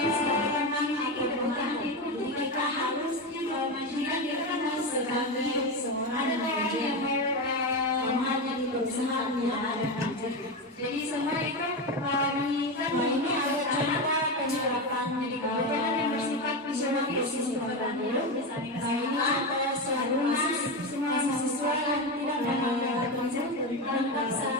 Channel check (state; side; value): normal; both; correlation 0.15